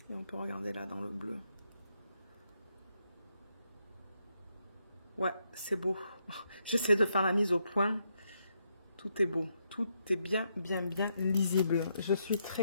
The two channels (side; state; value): both; inverted; correlation -0.79